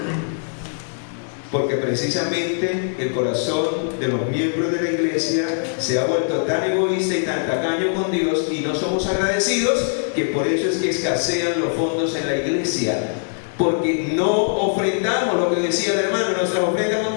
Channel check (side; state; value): right; silent; digital silence